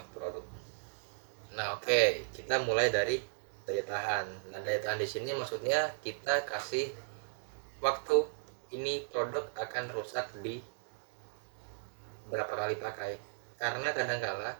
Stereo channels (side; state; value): left; silent; digital silence